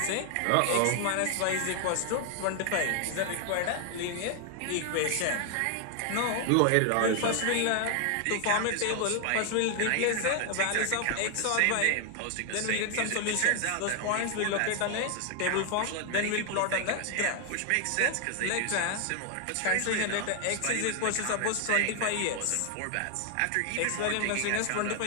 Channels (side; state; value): both; different; correlation 0.00